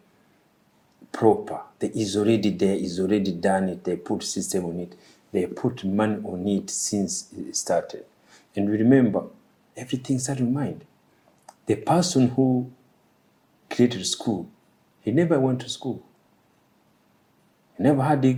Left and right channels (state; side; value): identical; both; correlation 1.00